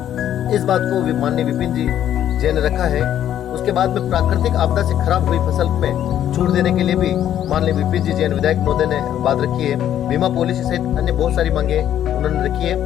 इस बात को माननीय विपिन जी जैन ने रखा है। उसके बाद में प्राकृतिक आपदा से खराब हुई फसल में छूट देने के लिए भी माननीय विपिन जी जैन विधायक महोदय ने बात रखी है। बीमा पॉलिसी सहित अन्य बहुत सारी मांगे उन्होंने रखी है।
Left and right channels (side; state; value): right; quieter; 10.9 dB